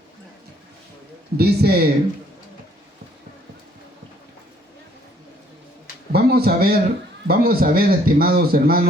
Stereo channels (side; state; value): both; normal; correlation 0.63